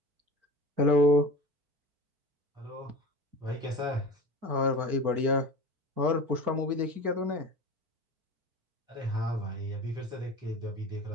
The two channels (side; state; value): left; late; 4.5 ms